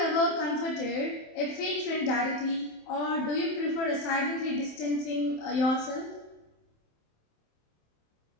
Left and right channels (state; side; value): late; right; 27 ms